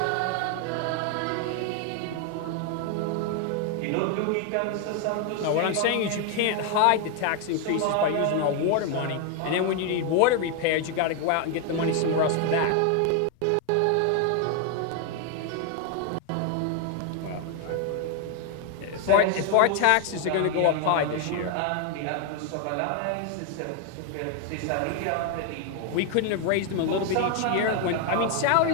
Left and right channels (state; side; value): different; both; correlation 0.01